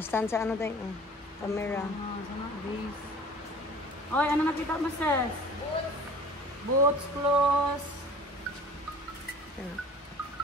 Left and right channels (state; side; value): normal; both; correlation 0.45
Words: stand sa ano tayo, camera. Sana, base. Oy, ano nakita mo, sis? Boots, clothes. Ano?